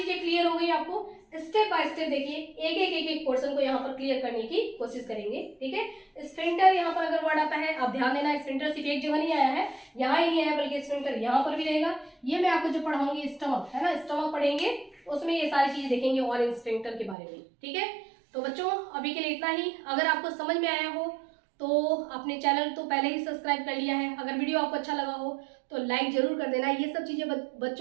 क्लियर हो गई आपको, स्टेप बाय स्टेप देखिए एक पोर्शन को यहाँ पर क्लियर करने की कोशिश करेंगे, ठीक है। स्फिंक्टर यहाँ पर अगर वर्ड आता है आप ध्यान देना, स्फिंक्टर सिर्फ एक जगह नहीं आया है, यहाँ ही नहीं आया बल्कि स्फिंक्टर यहाँ पर भी रहेगा। ये मैं आपको जो पढ़ाऊंगी स्टमक, है ना, स्टमक पढ़ेंगे उसमें ये सारी चीजें देखेंगे और स्फिंक्टर के बारे में, ठीक है। तो बच्चों अभी के लिए इतना ही। अगर आपको समझ में आया हो तो अपने चैनल तो पहले ही सब्सक्राइब कर लिया है, अगर वीडियो आपको अच्छा लगा हो तो लाइक जरूर कर देना। ये सब चीजें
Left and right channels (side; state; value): left; drops out; at 17.2 s